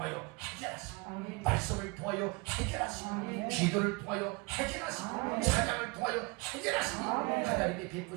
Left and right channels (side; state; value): left; quieter; 27.6 dB